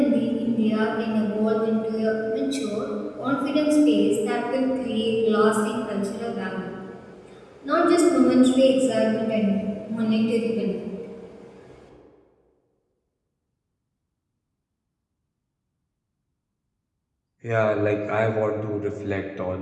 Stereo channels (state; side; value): identical; both; correlation 1.00